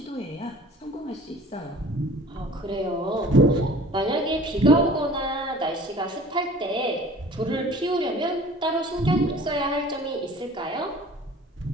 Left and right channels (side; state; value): both; normal; correlation 0.47